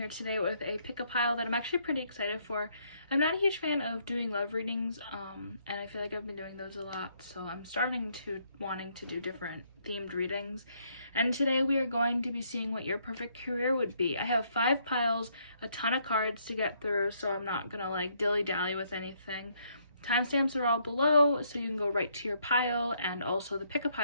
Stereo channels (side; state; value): both; inverted; correlation -0.71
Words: today with a pick-a pile that I'm actually pretty excited for. I'm not a huge fan of doing love readings, and I feel like I've been doing those a lot, so I'm wanting to do different themed readings. And today we are going to be seeing what your perfect career would be. I have 5 piles, a ton of cards to get through, so I'm not gonna like dilly-dally with anything. Timestamps are all below, so you can go right to your pile, and also the